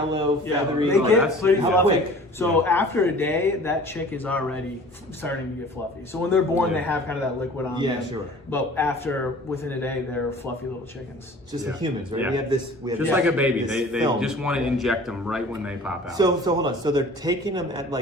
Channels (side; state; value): both; normal; correlation 0.46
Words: feathery. They get pretty fluffy. Quick. So after a day, that chick is already starting to get fluffy. So when they're born, they have kind of that liquid on them. Sure. But within a day, they're fluffy little chickens. Just like humans, right? We have this. Just like a baby. They just want to inject them right when they pop out. So hold on. So they're taking them at